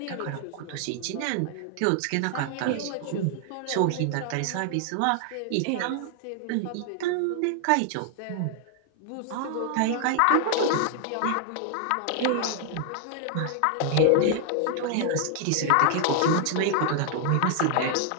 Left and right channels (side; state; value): both; different; correlation 0.00